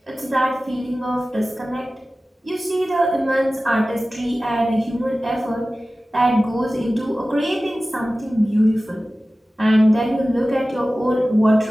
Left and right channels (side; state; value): both; normal; correlation 0.96